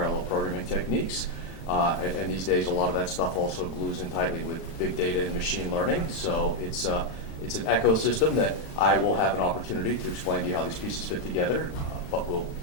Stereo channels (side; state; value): right; late; 36 ms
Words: programming techniques. And these days, a lot of that stuff also glues in tightly with big data and machine learning. So it's an ecosystem that I will have an opportunity to explain to you how these pieces fit together. But we'll